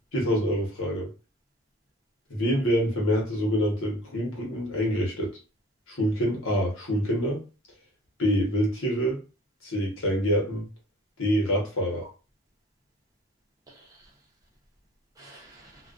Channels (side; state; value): both; normal; correlation 0.49